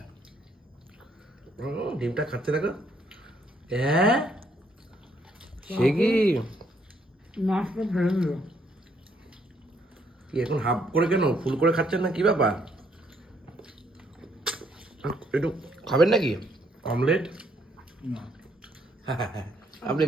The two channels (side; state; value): both; normal; correlation 0.70